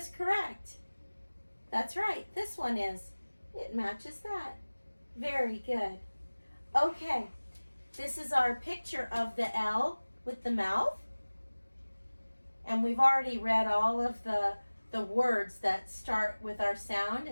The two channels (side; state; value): both; inverted; correlation -1.00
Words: correct? That's right, this one is. It matches that. Very good. Okay, this is our picture of the L with the mouth. And we've already read all of the words that start with our sound